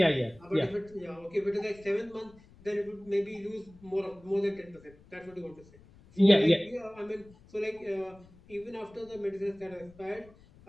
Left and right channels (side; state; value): left; noise; rumble, 24 dB below the sound